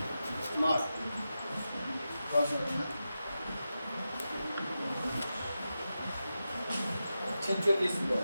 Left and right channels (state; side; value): inverted; both; correlation -0.91